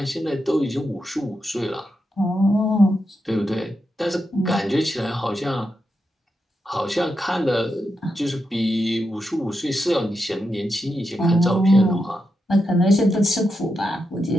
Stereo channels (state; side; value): normal; both; correlation 0.86